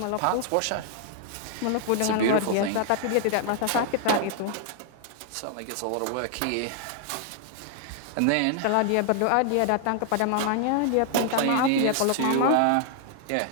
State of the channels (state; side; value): different; both; correlation 0.00